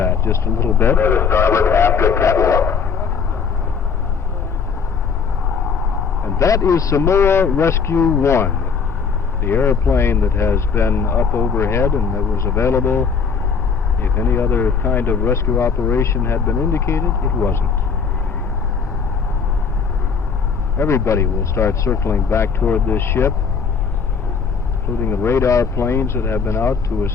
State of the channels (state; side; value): quieter; right; 5.8 dB